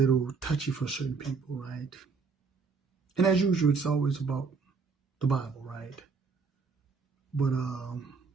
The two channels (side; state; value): left; quieter; 4.9 dB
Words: touchy for certain people, right? And as usual, it's always about the Bible, right? But the